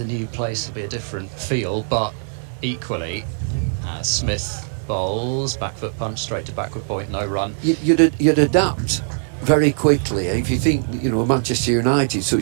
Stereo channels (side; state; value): left; silent; digital silence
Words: new place? Will be a different feel, but equally, Smith bowls, back foot punch, straight to backward point, no run. You'd adapt very quickly. If you think, you know, Manchester United,